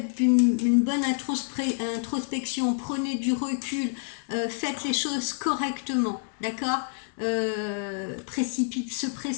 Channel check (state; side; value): silent; right; 60 dB below the other